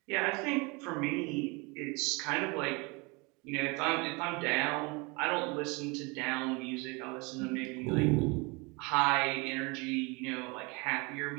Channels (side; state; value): left; quieter; 28.0 dB